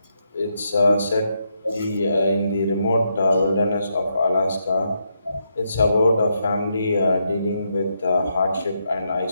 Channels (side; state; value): both; inverted; correlation -0.80